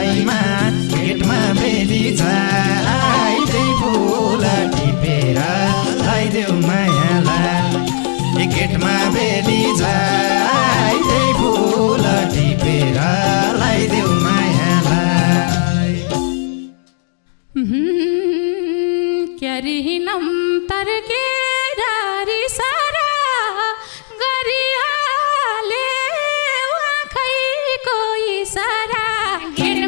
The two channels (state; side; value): silent; right; digital silence